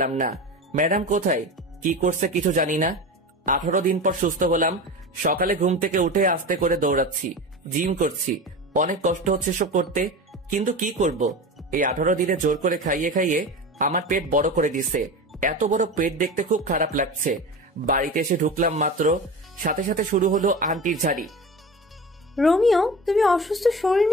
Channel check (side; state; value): both; normal; correlation 0.30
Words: না। ম্যাডাম কোথায়, কি করছে কিছু জানি না। 18 দিন পর সুস্থ হলাম। সকালে ঘুম থেকে উঠে আস্তে করে দৌড়াচ্ছি, জিম করছি। অনেক কষ্ট হচ্ছে সব করতে, কিন্তু কি করব। এই 18 দিনে জোর করে খাইয়ে খাইয়ে আমার পেট বড় করে দিছে। এত বড় পেট দেখতে খুব খারাপ লাগছে। বাড়িতে এসে ঢুকলাম মাত্র, সাথে সাথে শুরু হলো আন্টির ঝাড়ি। রোমিও, তুমি অসুস্থ শরীর